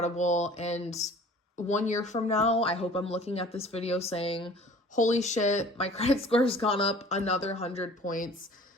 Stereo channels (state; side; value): normal; both; correlation 0.48